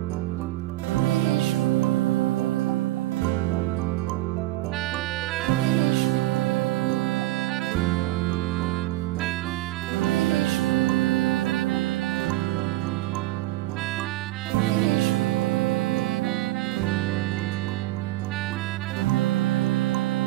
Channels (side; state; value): left; quieter; 17.1 dB